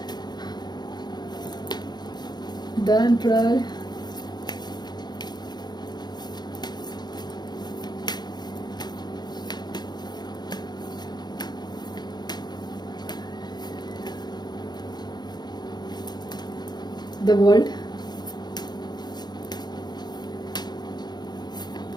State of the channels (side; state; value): right; late; 0.20 ms